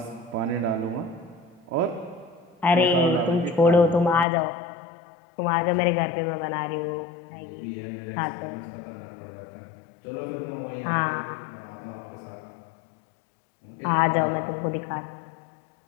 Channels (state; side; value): drops out; right; at 4.2 s